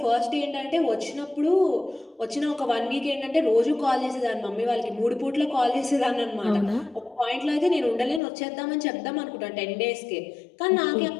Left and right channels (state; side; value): drops out; right; at 8.2 s